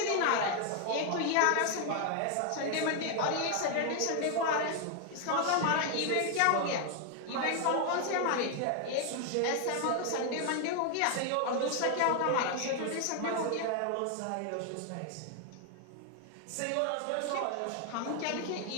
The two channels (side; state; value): both; different; correlation 0.00